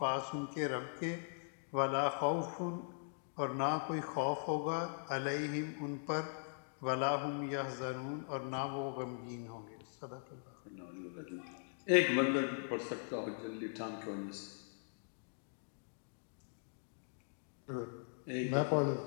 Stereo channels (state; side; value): silent; right; digital silence